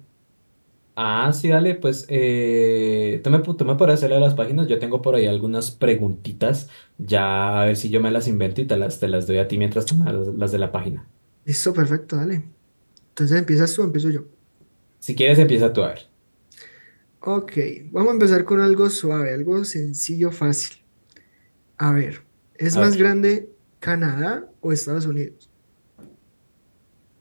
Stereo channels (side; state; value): both; inverted; correlation -1.00